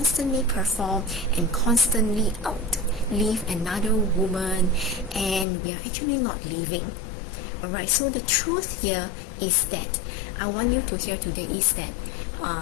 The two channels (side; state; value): right; drops out; at 5.5 s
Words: perform and constantly outlive another woman, and we are actually not living. Alright, so the truth here is that I want you to hear today is that